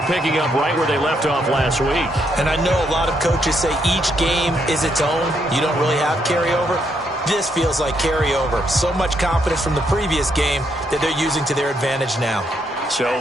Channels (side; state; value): both; normal; correlation 0.76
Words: picking up right where they left off last week. And I know a lot of coaches say each game is its own. You don't really have carryover. This feels like carryover. So much confidence from the previous game that they're using to their advantage now. So